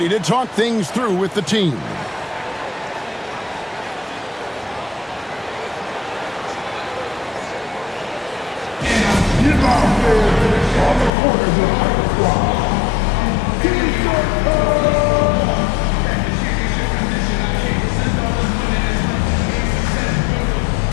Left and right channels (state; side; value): drops out; right; at 11.1 s